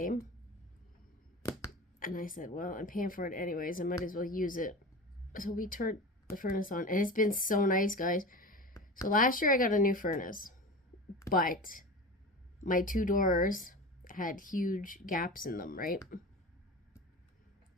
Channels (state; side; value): normal; both; correlation 0.31